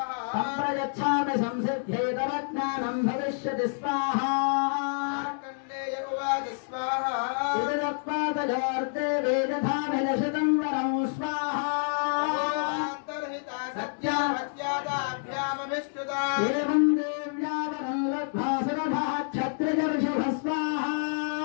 సంప్రయచ్ఛామి సంసిద్ధ్యై తవ జ్ఞానం భవిష్యతి స్వాహా. మార్కండేయ ఉవాచ స్వాహా ఇదత్వాదజార్తే వేదధామిలషితం వరం స్వాహా. ఏవం దేవ్యావరం లబ్ధ్వా సురభః క్షత్రజర్షభ స్వాహా.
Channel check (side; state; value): right; silent; digital silence